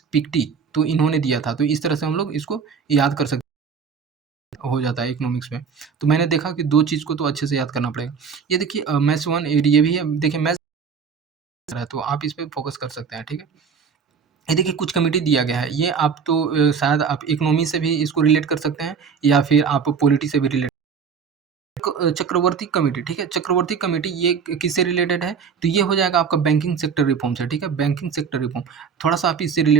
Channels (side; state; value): left; quieter; 6.2 dB